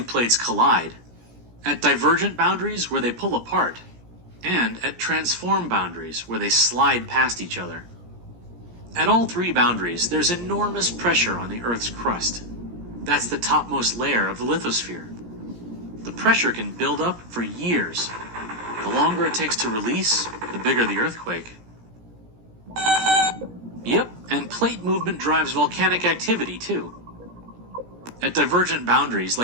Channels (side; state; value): left; late; 17 ms